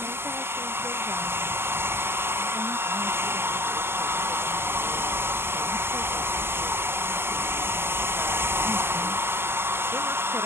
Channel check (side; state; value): left; late; 0.12 ms